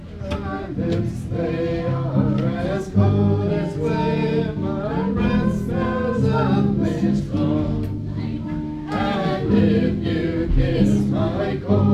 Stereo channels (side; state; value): both; identical; correlation 1.00